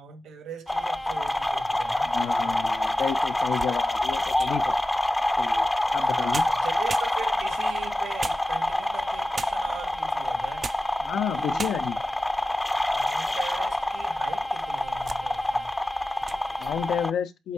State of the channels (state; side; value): normal; both; correlation 0.94